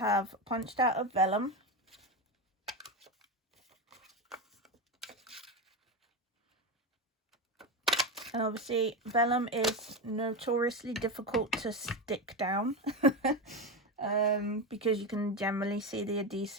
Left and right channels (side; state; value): both; normal; correlation 0.15